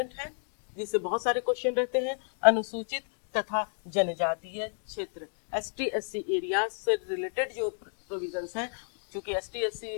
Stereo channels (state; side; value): silent; right; 57 dB below the other